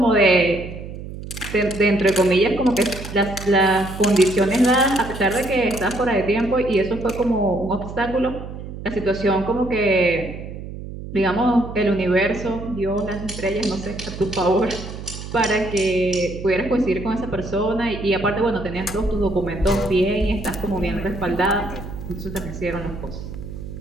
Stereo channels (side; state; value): right; noise; hum, 10 dB below the sound